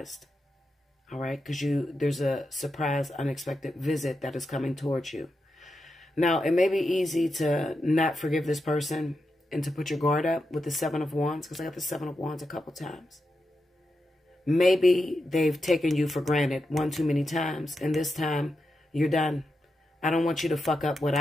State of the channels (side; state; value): both; normal; correlation 0.87